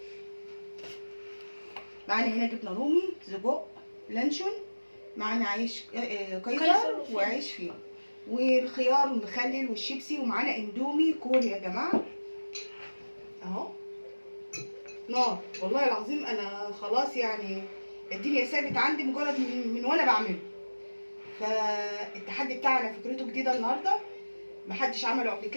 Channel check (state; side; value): inverted; both; correlation -1.00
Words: معانا هنا جبنه رومي، سجق، لانشون، معانا عيش قيصر وعيش فينو، والخيار والمخلل والشيبسي، ومعانا اندومي كوري يا جماعه اهو. نار والله العظيم، انا خلاص يعني الدنيا ثابت عندي مجرد من وانا بعمله. فالتحدي بتاعنا فكرته جديده النهارده، محدش عمله قبل